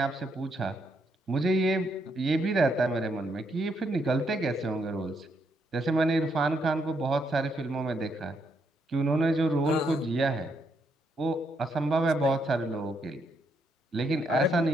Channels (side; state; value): both; normal; correlation 0.76